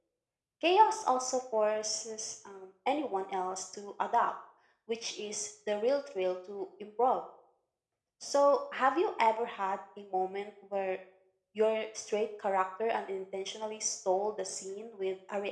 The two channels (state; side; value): identical; both; correlation 1.00